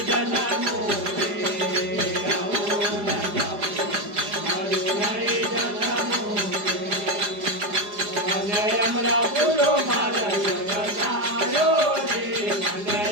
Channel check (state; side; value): late; left; 4.9 ms